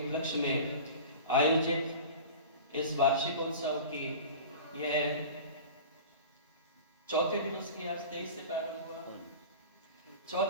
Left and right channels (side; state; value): both; inverted; correlation -0.36